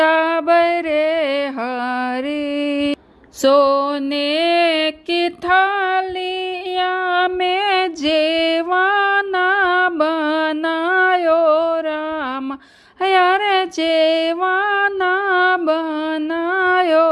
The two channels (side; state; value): both; identical; correlation 1.00